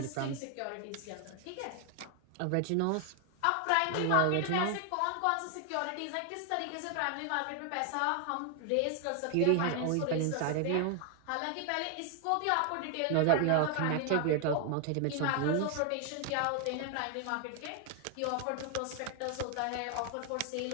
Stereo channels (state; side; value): different; both; correlation 0.00